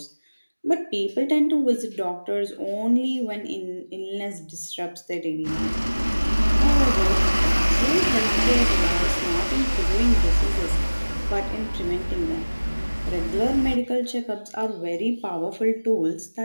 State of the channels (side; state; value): both; inverted; correlation -1.00